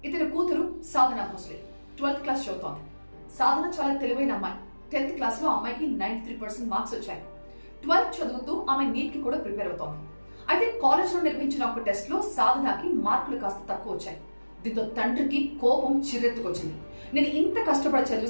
ఇతని కూతురు సాధన భోస్లే 12th క్లాస్ చదువుతోంది. సాధన చాలా తెలివైన అమ్మాయి. 10th క్లాస్ లో అమ్మాయికి 93% మార్క్స్ వచ్చాయి. 12th చదువుతూ ఆమె నీట్ కి కూడా ప్రిపేర్ అవుతోంది. అయితే కాలేజ్ లో నిర్వహించిన ఒక టెస్ట్ లో సాధనకి మార్కులు కాస్త తక్కువ వచ్చాయి. దీంతో తండ్రికి కోపం చిరెత్తుకొచ్చింది. నేను ఇంత కష్టపడి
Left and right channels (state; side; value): inverted; both; correlation -1.00